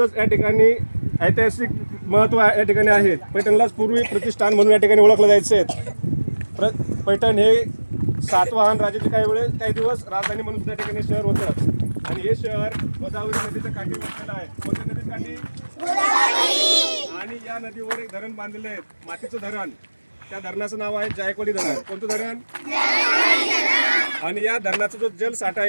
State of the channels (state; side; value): inverted; both; correlation -1.00